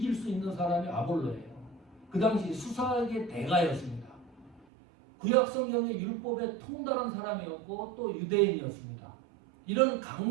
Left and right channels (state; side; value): drops out; left; at 4.7 s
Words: 수 있는 사람이 아볼로예요. 그 당시 수사학의 대가였습니다. 구약성경의 율법에 통달한 사람이었고 또 유대인이었습니다. 이런